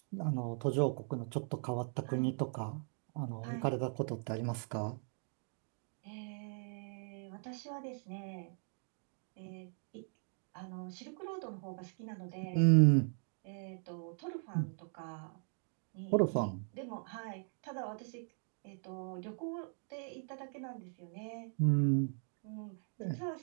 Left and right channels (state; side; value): silent; left; 52 dB below the other